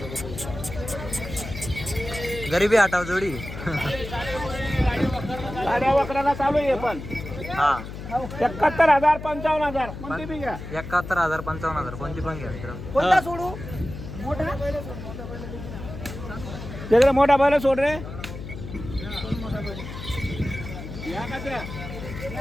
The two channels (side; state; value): left; noise; hum, 10 dB below the sound